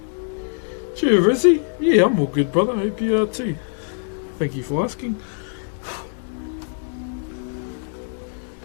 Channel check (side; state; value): right; silent; 61 dB below the other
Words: Cheer, Rizzy. Yeah, I'm all good, brother. Hope you are too. Thank you for asking.